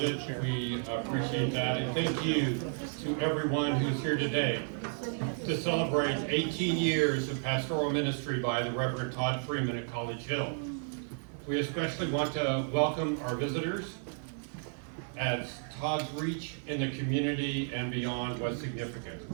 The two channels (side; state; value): left; silent; 56 dB below the other